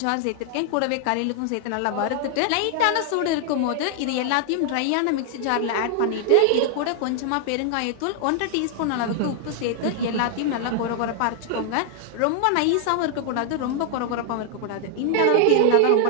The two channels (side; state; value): both; different; correlation 0.00